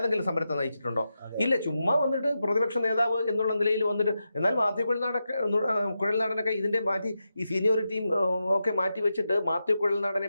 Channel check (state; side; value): inverted; both; correlation -0.88